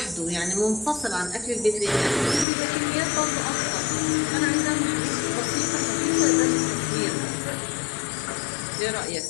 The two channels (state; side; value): drops out; right; at 2.5 s